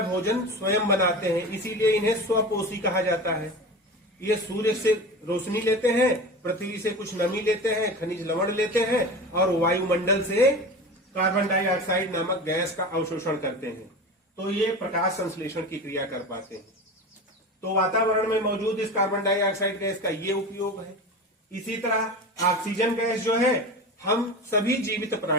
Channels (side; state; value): both; normal; correlation 0.30